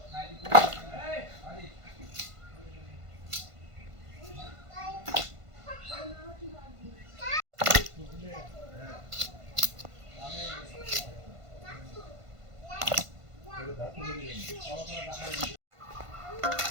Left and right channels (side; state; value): left; late; 1.5 ms